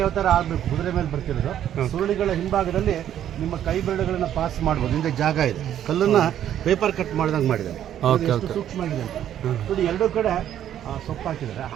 ಅವತಾರ ಆಗಬೇಕು, ಕುದುರೆ ಮೇಲೆ ಬರ್ತಿರೋದು. ಸುರುಳಿಗಳ ಹಿಂಭಾಗದಲ್ಲಿ ನಿಮ್ಮ ಕೈ ಬೆರಳುಗಳನ್ನ ಪಾಸ್ ಮಾಡ್ಬೋದು. ಹಿಂದೆ ಜಾಗ ಇದೆ, ಕಲ್ಲನ್ನ ಪೇಪರ್ ಕಟ್ ಮಾಡಿದಂಗೆ ಮಾಡಿದ್ದಾರೆ. ಸೂಕ್ಷ್ಮ ಆಗಿದೆ ಅಂತ ನೋಡಿ. ಎರಡೂ ಕಡೆ ಸೊಪ್ಪು ಹಾಕಿದ್ದಾರೆ.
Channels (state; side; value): quieter; left; 10.7 dB